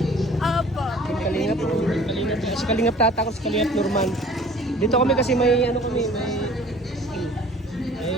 Apo. Kalingap, Kalingap. Si Kalingap Tata ko, si Kalingap Norman. Dito kami kasi may ano kami, may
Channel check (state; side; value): normal; both; correlation 0.49